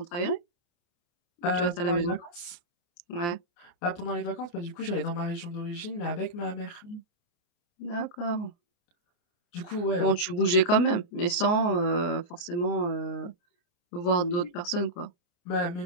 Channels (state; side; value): late; right; 29 ms